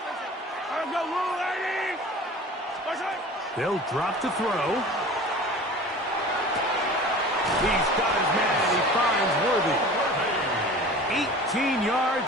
Let's go, Lou, lady. They'll drop to throw. He's got his man. He finds Worthy. 18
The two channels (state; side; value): normal; both; correlation 0.40